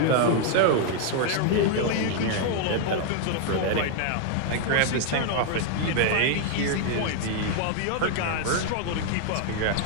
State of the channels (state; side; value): different; both; correlation 0.00